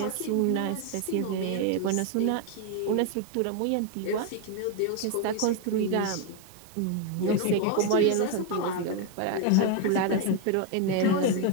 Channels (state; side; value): different; both; correlation 0.01